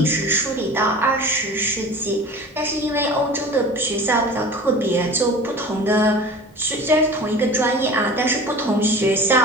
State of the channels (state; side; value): normal; both; correlation 0.39